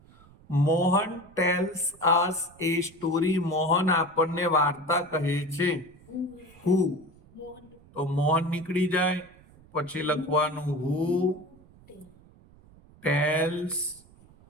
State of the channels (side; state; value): right; noise; rumble, 25 dB below the sound